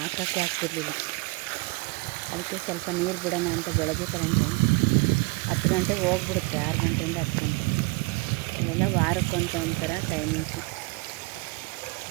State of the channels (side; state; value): left; quieter; 26.1 dB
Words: ಹಾಕೋಕ್ಕೆ ಆಗ್ತಿರ್ಲಿಲ್ಲ. ಅದಕ್ಕೆ ಸ್ವಲ್ಪ ನೀರು ಬಿಡೋಣ ಅಂತ ಬೆಳಗ್ಗೆ ಕರೆಂಟು 10 ಗಂಟೆಗೆ ಹೋಗ್ಬಿಡುತ್ತೆ, 6 ಗಂಟೆಯಿಂದ 10 ಗಂಟೆ. ಇವೆಲ್ಲ ವಾರಕ್ಕೊಂತ ಒಂಥರ ಟೈಮಿಂಗ್ಸು.